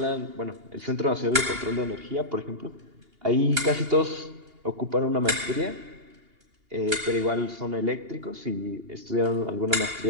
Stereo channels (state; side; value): late; left; 2.8 ms